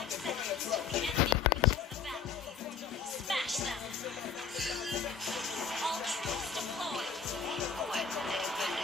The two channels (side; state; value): right; quieter; 6.1 dB